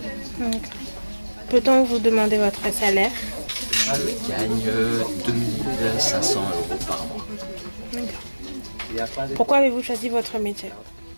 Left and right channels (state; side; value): inverted; both; correlation -1.00